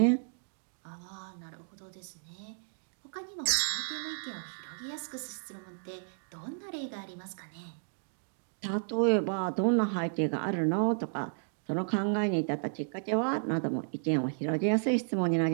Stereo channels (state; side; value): silent; left; digital silence